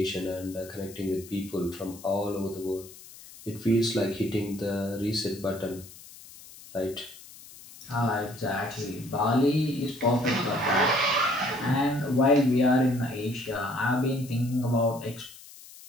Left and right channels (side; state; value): left; noise; hiss, 19 dB below the sound